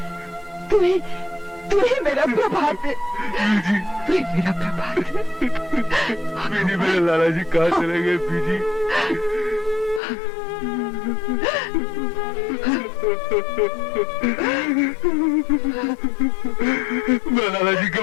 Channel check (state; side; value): drops out; right; at 10.0 s